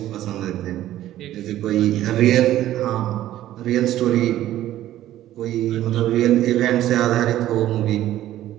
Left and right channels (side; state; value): left; quieter; 13.5 dB